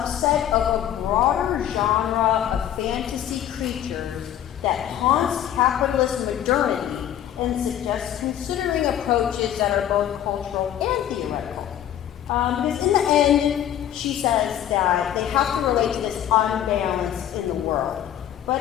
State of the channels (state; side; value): quieter; right; 11.0 dB